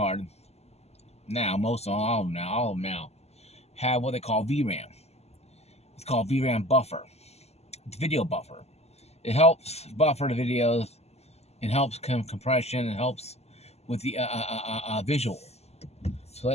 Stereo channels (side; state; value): right; late; 0.30 ms